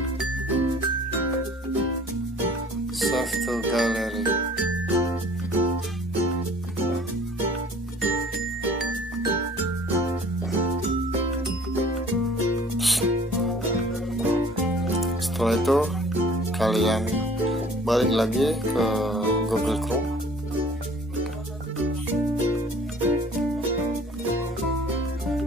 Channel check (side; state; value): both; normal; correlation 0.51